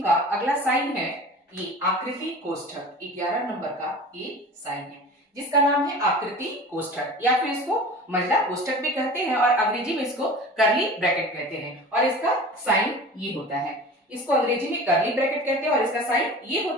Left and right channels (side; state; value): both; normal; correlation 0.38